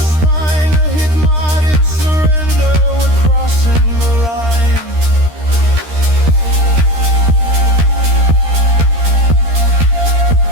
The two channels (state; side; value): late; left; 13 ms